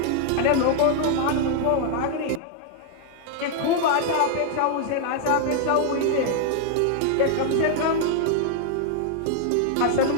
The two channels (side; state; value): both; different; correlation 0.00